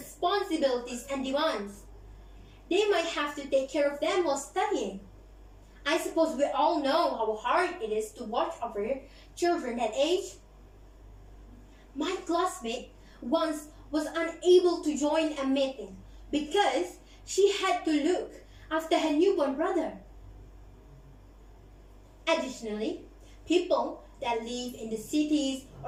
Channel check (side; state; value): both; identical; correlation 1.00